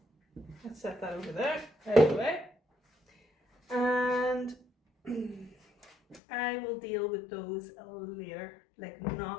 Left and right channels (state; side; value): drops out; right; at 6.2 s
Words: let's set that over there, out of the way. And I will deal with those later, like